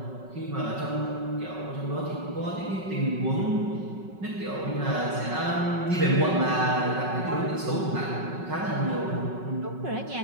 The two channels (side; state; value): left; late; 5.4 ms